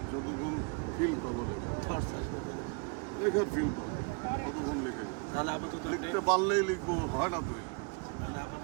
যতক্ষণ ফিল পাবো লেখা, থটস আসবে তো। লেখার ফিল পাবো ততক্ষণ লিখে যাবো। তাহলে আপাতত লিখতে পারলেই লিখবো, হয় না তো? মানে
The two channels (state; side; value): quieter; left; 32.8 dB